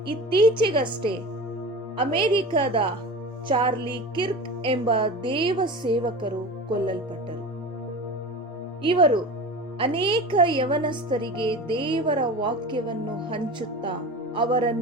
ಇತ್ತೀಚೆಗಷ್ಟೇ ಅಮೆರಿಕದ ಚಾರ್ಲಿ ಕಿರ್ಕ್ ಎಂಬ ದೇವ ಸೇವಕರು ಕೊಲ್ಲಲ್ಪಟ್ಟರು. ಇವರು ಅನೇಕ ಯವನಸ್ಥರಿಗೆ ದೇವರ ವಾಕ್ಯವನ್ನು ಹಂಚುತ್ತಾ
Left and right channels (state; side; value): normal; both; correlation 0.33